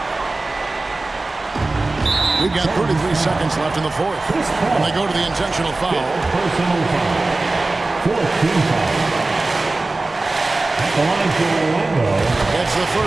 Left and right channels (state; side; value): quieter; left; 3.2 dB